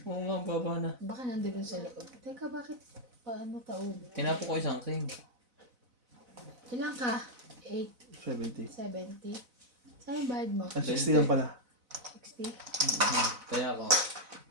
Oo nga, baba na. Baka nandun sa loob. Teka, bakit? Paano taob? Tinapo ko isang king. Ilan ka? 8, 70. 70. Saan yung bayad mo? 60 lang pala. 60? Kaya ako.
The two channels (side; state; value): left; late; 4.0 ms